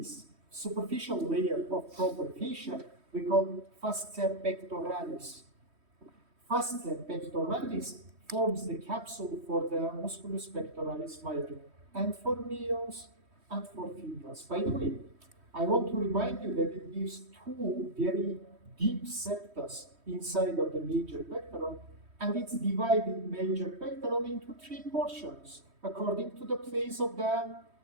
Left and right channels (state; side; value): late; left; 3.1 ms